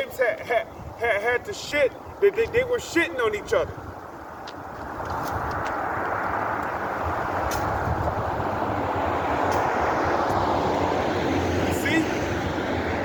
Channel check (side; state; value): both; identical; correlation 1.00